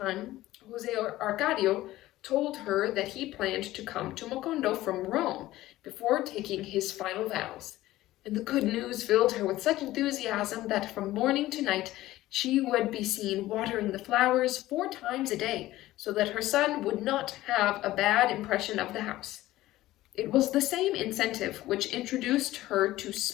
Jose Arcadio told her that he planned to come to Mocondo from Rome before taking his final vows, and the good news filled her with such enthusiasm that from morning to night she would be seen watering the flowers 4 times a day, so that her son would not have a bad impression of the house. It was the same incentive which introduced her to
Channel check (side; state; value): right; quieter; 16.1 dB